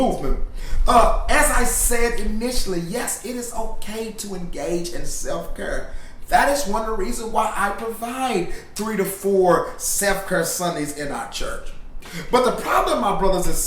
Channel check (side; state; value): both; identical; correlation 1.00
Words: As I said initially, yes, it is okay to engage in self-care. That is one of the reasons why I provide 3 to 4 self-care Sundays in our church. But the problem, my brothers and